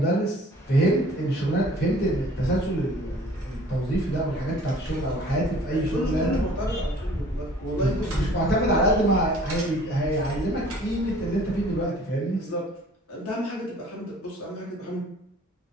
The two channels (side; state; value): both; normal; correlation 0.52